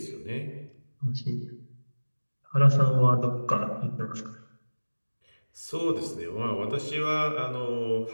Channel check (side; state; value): both; inverted; correlation -1.00